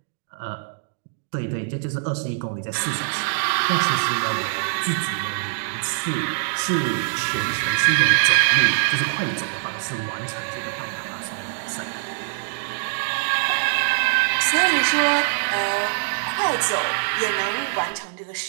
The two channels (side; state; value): left; silent; digital silence